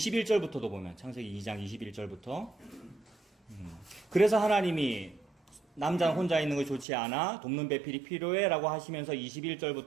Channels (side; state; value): left; drops out; at 6.9 s